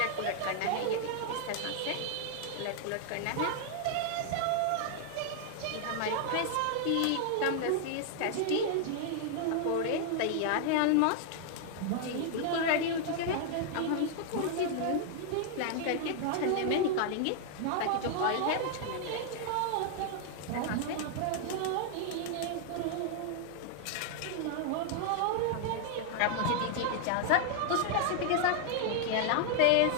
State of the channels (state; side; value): different; both; correlation -0.01